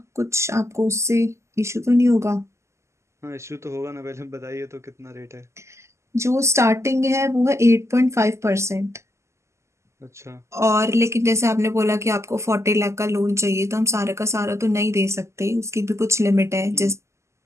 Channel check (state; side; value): late; left; 0.13 ms